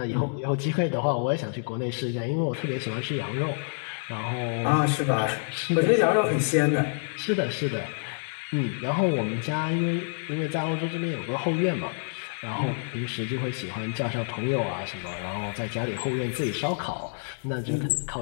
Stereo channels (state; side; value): silent; right; 60 dB below the other